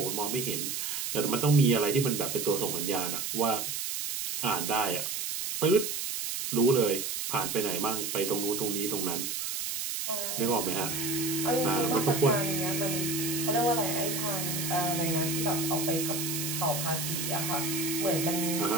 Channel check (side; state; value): right; noise; hiss, 3 dB below the sound